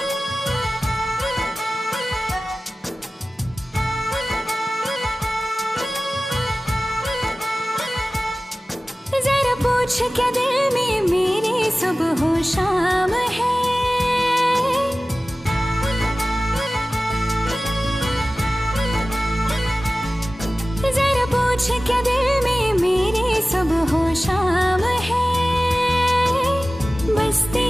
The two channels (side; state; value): both; normal; correlation 0.96